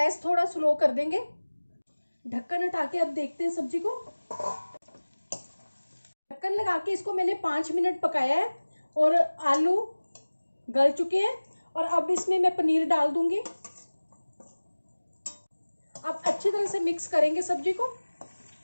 थोड़ा स्लो कर देंगे। ढक्कन हटा के अब देखते हैं सब्जी को। ढक्कन लगा के इसको मैंने 5 मिनट पकाया है और आलू गल चुके हैं। और अब इसमें मैं पनीर डाल दूंगी। अब अच्छी तरह से मिक्स करेंगे सब्जी को।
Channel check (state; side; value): inverted; both; correlation -1.00